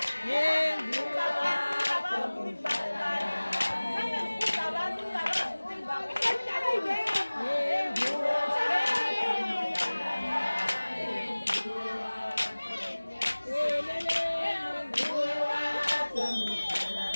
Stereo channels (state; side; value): inverted; both; correlation -1.00